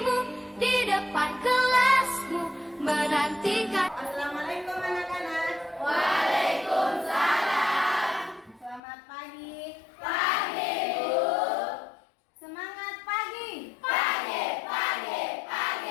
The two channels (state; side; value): drops out; right; at 8.8 s